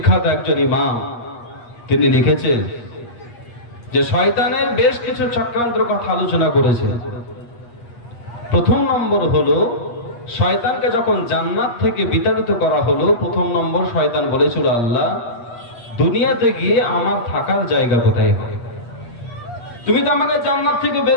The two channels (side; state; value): right; late; 8.4 ms